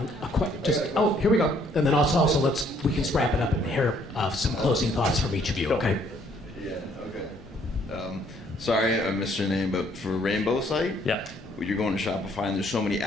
here we go. And then also we can wrap it up and hear some closing thoughts from each of you. Go. Okay. Yeah, okay. Sorry, I missed your name, but for Rainbow site, Yeah. you're going to Shopify and there's so many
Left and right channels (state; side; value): normal; both; correlation 0.64